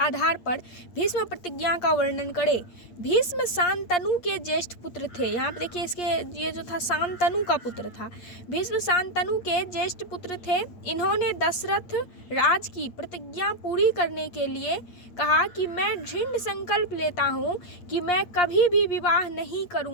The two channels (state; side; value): late; right; 8.5 ms